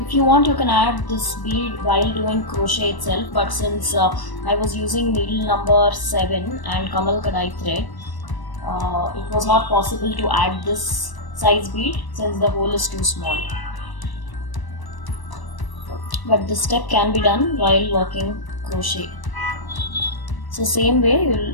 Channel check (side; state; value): right; late; 1.0 ms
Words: you want, you can add this bead while doing crochet itself, but since I was using needle number 7 and Kamal Kadai thread, it was not possible to add this size bead since the hole is too small. But this step can be done while working crochet. So same way